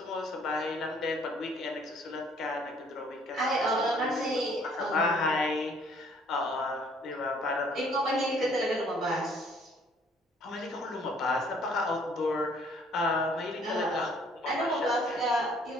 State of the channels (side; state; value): both; normal; correlation 0.60